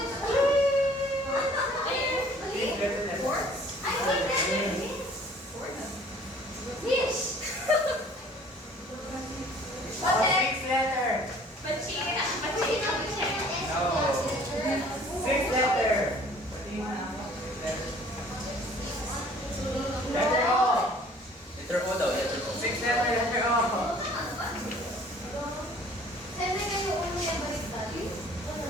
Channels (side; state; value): both; normal; correlation 0.53